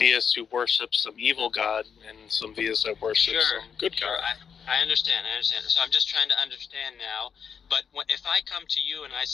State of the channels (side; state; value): right; quieter; 7.0 dB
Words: who worship some evil god and some theists that worship some good god. I understand. So I'm just trying to understand now. But if I come to you and I